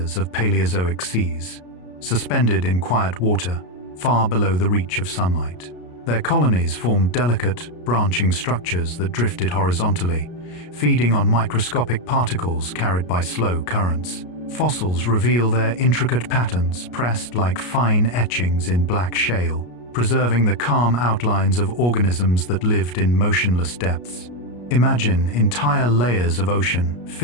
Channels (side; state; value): right; late; 33 ms